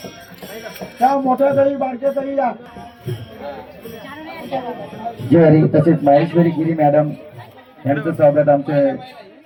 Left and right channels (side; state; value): both; identical; correlation 1.00